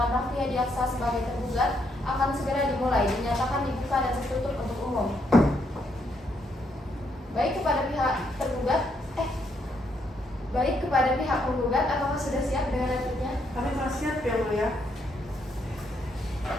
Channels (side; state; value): both; normal; correlation 0.75